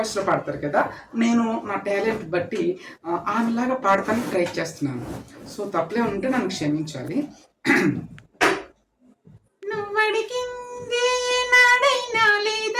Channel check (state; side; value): identical; both; correlation 1.00